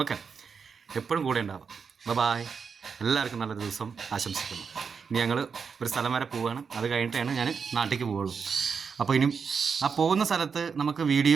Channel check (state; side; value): quieter; left; 5.9 dB